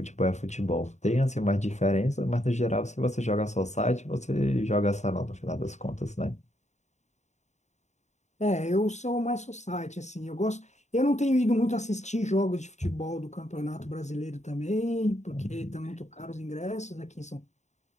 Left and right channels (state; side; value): late; right; 0.34 ms